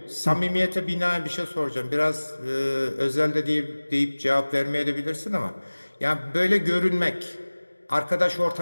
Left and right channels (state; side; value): inverted; both; correlation -1.00